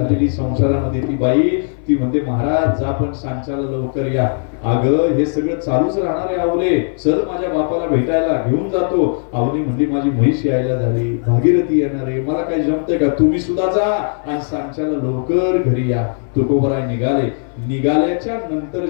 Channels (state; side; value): silent; right; 61 dB below the other